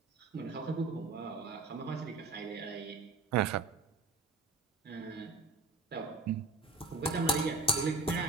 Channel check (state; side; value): quieter; left; 3.6 dB